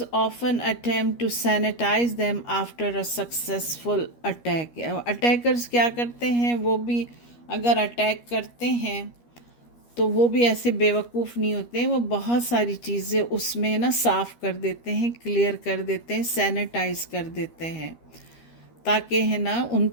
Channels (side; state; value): right; late; 13 ms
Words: often attempt to sanitize them after a successful attack. Attackers کیا کرتے ہیں، وہ بھی اگر attack کرتے ہیں تو وہ بھی ایسے بیوقوف نہیں ہوتے ہیں، وہ بہت ساری چیزیں اس میں نا صاف کر دیتے ہیں، کلیئر کر دیتے ہیں، سینیٹائز کر دیتے ہیں تاکہ ہے نا ان